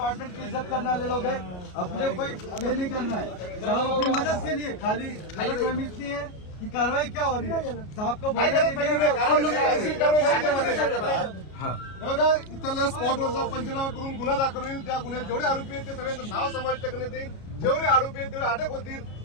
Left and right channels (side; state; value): right; late; 33 ms